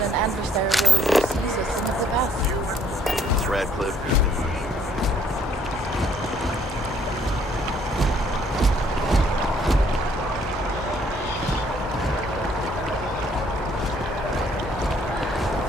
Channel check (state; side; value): normal; both; correlation 0.66